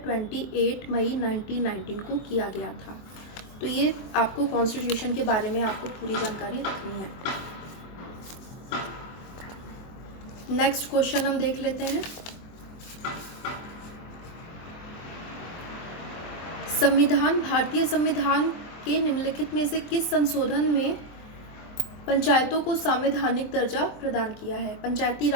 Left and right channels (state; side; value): late; right; 24 ms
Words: मई 1919 को किया गया था। तो ये आपको कॉन्स्टिट्यूशन के बारे में आपको पूरी जानकारी रखनी है। नेक्स्ट क्वेश्चन हम देख लेते हैं। भारतीय संविधान के निम्नलिखित में से किस संशोधन में पंचायतों को संवैधानिक दर्जा प्रदान किया है? पंचायती